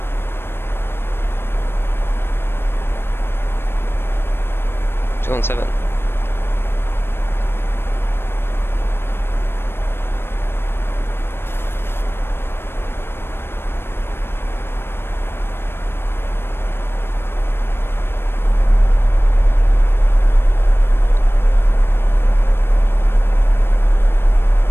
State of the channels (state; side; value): late; right; 0.11 ms